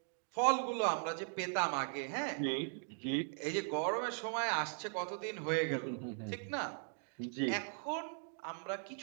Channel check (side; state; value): left; silent; 52 dB below the other